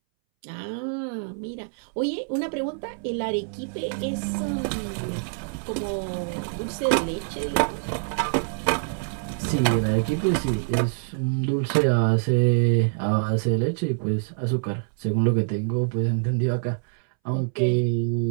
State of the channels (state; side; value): silent; left; 61 dB below the other